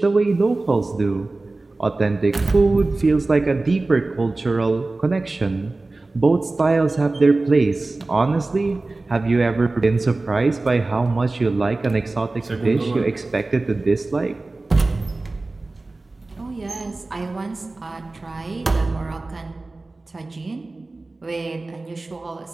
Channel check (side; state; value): left; quieter; 3.2 dB